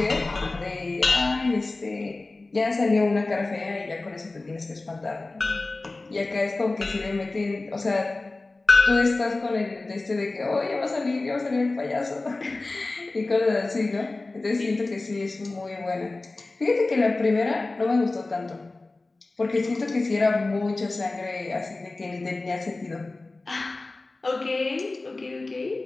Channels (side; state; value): right; quieter; 3.2 dB